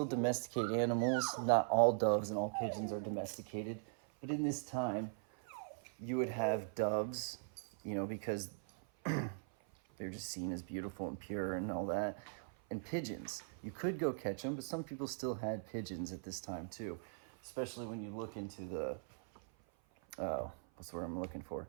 domesticated animals. Not all doves and all pigeons are domesticated. But in this time, you would have doves, because they're just seen as beautiful and pure and all that. And pigeons. You could go catch them, but some people still had pigeons at this time too. Especially when you look into the, what's the word I'm looking for?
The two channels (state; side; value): silent; left; 51 dB below the other